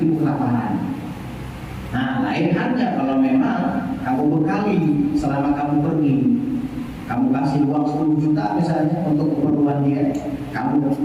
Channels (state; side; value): identical; both; correlation 1.00